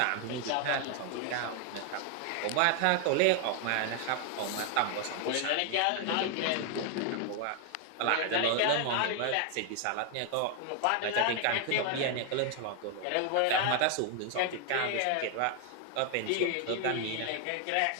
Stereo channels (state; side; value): different; both; correlation 0.00